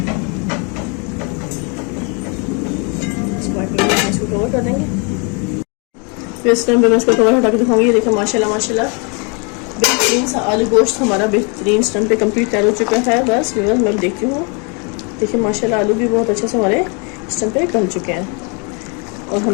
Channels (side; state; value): right; quieter; 34.3 dB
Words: इसको कवर कर देंगे। फिर इस टाइम पे मैं इसको कवर हटा के दिखाऊंगी। ये देखिए माशाल्लाह माशाल्लाह बेहतरीन सा आलू गोश्त हमारा बेहतरीन स्टम पे कंप्लीट तैयार हो चुका है। बस मैं देखती हूँ, देखिए माशाल्लाह आलू भी बहुत अच्छे से हमारे स्टम पे गल चुके हैं, और